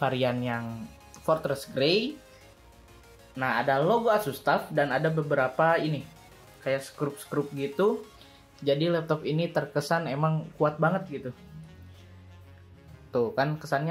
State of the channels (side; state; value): both; identical; correlation 1.00